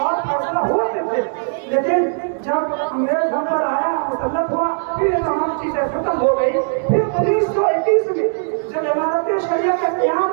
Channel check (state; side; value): silent; left; digital silence